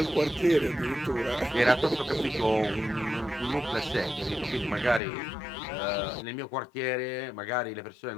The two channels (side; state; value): right; drops out; at 5.0 s